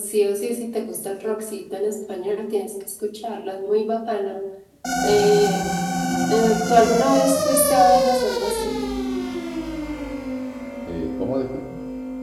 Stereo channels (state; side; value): identical; both; correlation 1.00